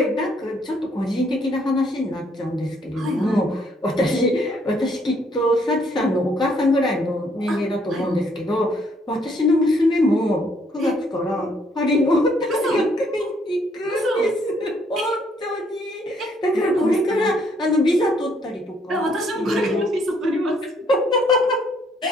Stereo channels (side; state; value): both; normal; correlation 0.68